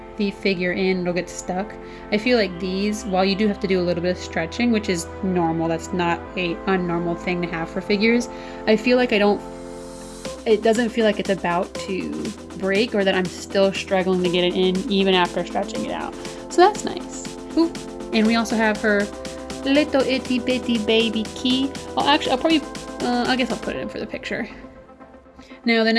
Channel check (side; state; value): both; identical; correlation 1.00